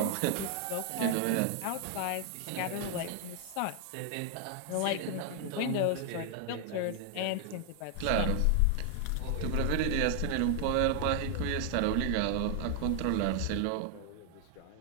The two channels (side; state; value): both; different; correlation 0.00